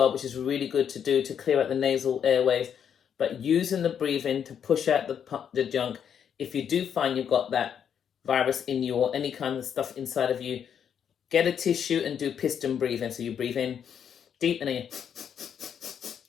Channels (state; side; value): quieter; right; 8.2 dB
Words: which is really good to do to clear out the nasal airways. But using the breathing to push out the junk, if you do find you've got that virus in you or any kind of stuff inside of you, get a tissue and do piston breathing. So you breathe in deep and then you,